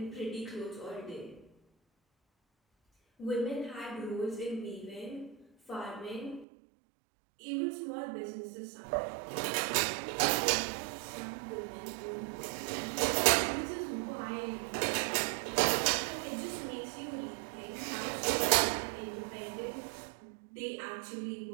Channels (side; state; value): left; drops out; at 6.5 s